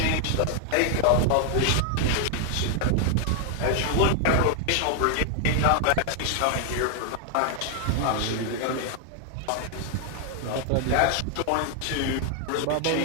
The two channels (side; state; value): both; different; correlation 0.00